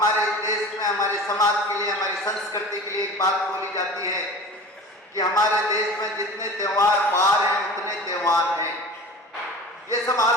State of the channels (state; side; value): normal; both; correlation 0.38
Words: देश में, हमारे समाज के लिए, हमारी संस्कृति के लिए एक बात बोली जाती है कि हमारे देश में जितने त्योहार बार हैं उतने त्योहार हैं। ये सब